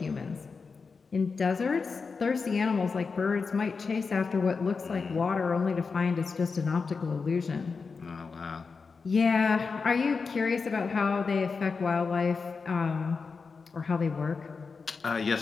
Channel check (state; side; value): quieter; right; 4.8 dB